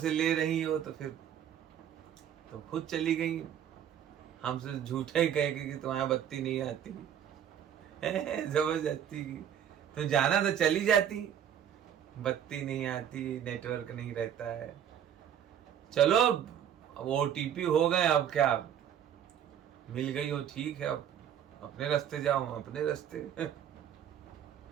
ले रही हो तो फिर तो खुद चली गई, हमसे झूठे ही कह के कि तुम्हारी बत्ती नहीं आती, जबरदस्ती की। तुम जाना तो चली जाती, बत्ती नहीं आती, नेटवर्क नहीं रहता है। चलो अब OTP हो गए, अब क्या, मिल गई हो ठीक है, अब अपने रास्ते जाओ, अपने रास्ते।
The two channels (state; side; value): quieter; left; 9.5 dB